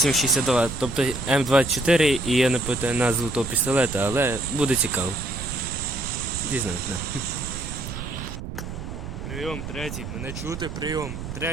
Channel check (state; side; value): noise; right; rumble, 8 dB below the sound